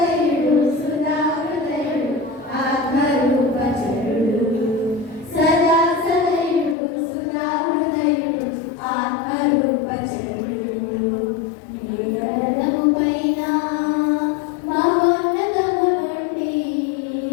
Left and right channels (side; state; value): right; drops out; at 6.8 s